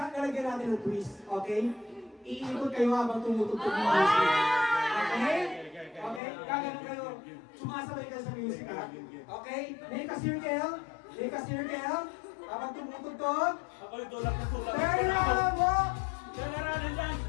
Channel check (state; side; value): drops out; right; at 6.2 s